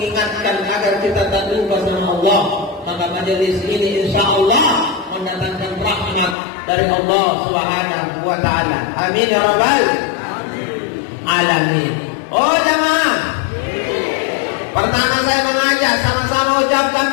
agar kita tak lupa sama Allah. Maka majelis ini insya Allah mendatangkan rahmat dari Allah Subhanahu wa Ta'ala. Amin ya rabbal alamin. Oh jemaah, pertama saya mengajak sama-sama ucapkan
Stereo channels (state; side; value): drops out; right; at 6.4 s